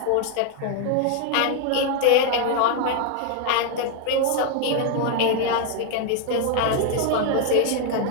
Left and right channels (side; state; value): both; different; correlation 0.00